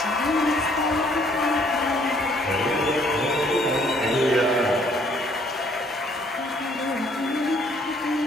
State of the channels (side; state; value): both; normal; correlation 0.63